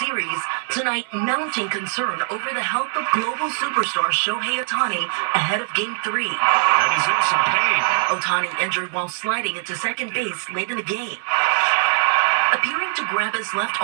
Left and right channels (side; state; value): left; silent; digital silence